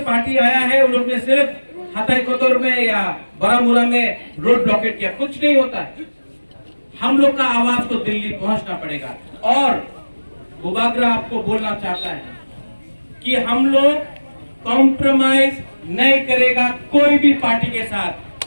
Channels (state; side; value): inverted; both; correlation -1.00